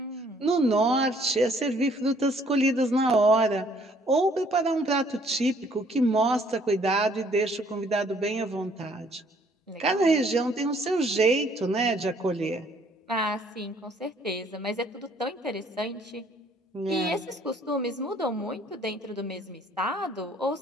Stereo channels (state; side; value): normal; both; correlation 0.62